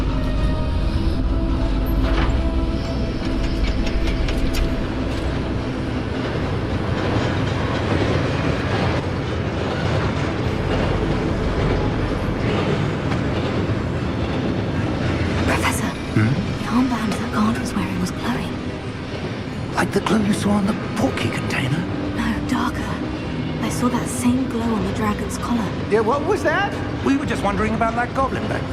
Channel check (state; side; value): identical; both; correlation 1.00